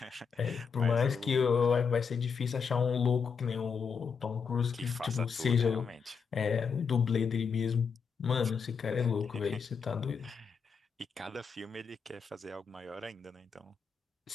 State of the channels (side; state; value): right; quieter; 5.9 dB